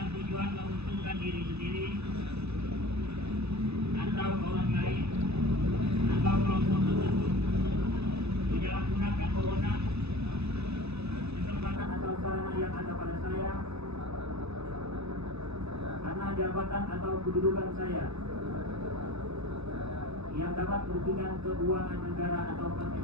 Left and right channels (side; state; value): left; late; 0.79 ms